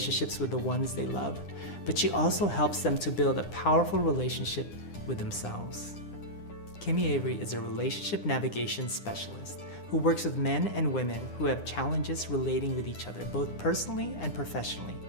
with the ones they love, but she also helps them to build a powerful relationship with themselves. Kimi Avary is a relationship navigation specialist who works with men and women who have challenges relating with each other, both personally and professionally.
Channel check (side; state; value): right; late; 9.8 ms